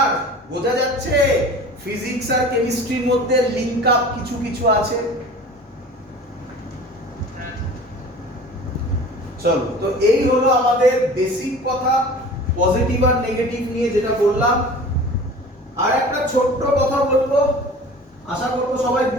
বোঝা যাচ্ছে ফিজিক্স আর কেমিস্ট্রির মধ্যে লিংক আপ কিছু কিছু আছে। চলো, তো এই হলো আমাদের বেসিক কথা, পজিটিভ আর নেগেটিভ নিয়ে যেটা বললাম। আর একটা ছোট্ট কথা বলবো, আশা করবো সবাই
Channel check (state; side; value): normal; both; correlation 0.41